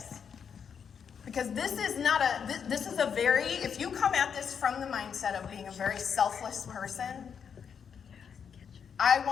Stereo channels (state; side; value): quieter; right; 7.1 dB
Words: Because this is a very, if you come at this from the mindset of being a very selfless person, I